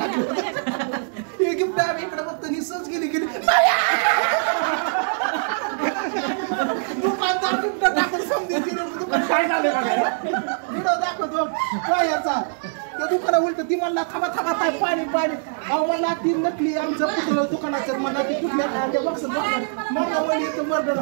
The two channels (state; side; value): silent; left; digital silence